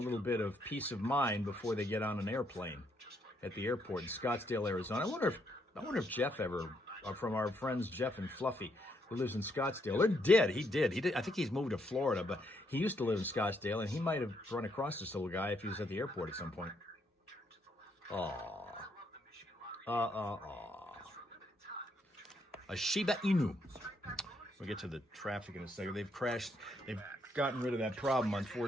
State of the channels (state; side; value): normal; both; correlation 0.74